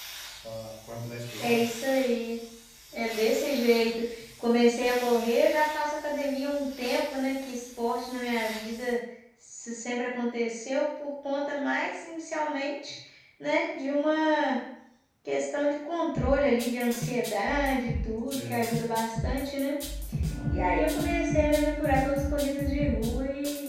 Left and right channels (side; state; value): both; identical; correlation 1.00